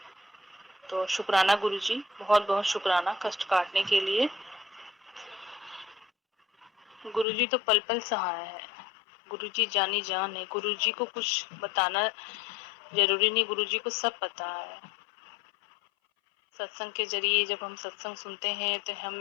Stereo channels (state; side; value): drops out; right; at 7.2 s